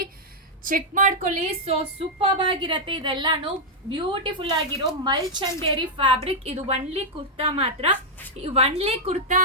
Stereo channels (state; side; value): normal; both; correlation -0.04